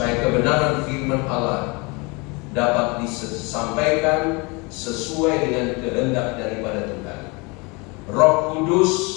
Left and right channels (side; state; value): right; quieter; 28.1 dB